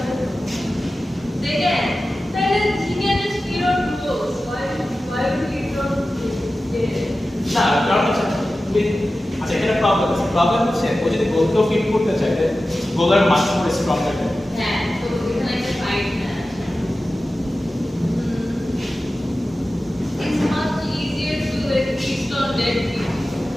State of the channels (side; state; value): both; normal; correlation 0.94